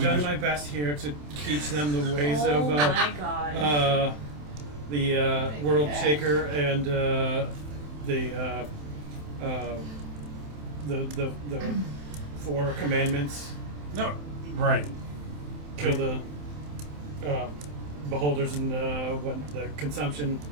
done just- my best here to teach them the ways Oh of my god. the World Shaker and the Four Commandments. No, right. Kill the beholders and the consumption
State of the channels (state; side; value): late; left; 27 ms